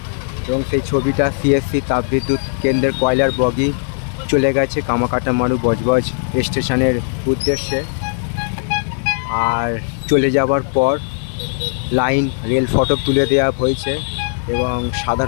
এবং সেই ছবিটা সিএসসি তাপবিদ্যুৎ কেন্দ্রের কয়লার বগি চলে গেছে কামাকাটামারু বজবজ স্টেশনের উদ্দেশ্যে। আর চলে যাওয়ার পর লাইন রেল ফটক তুলে দেওয়া হয়েছে এবং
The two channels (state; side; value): silent; right; digital silence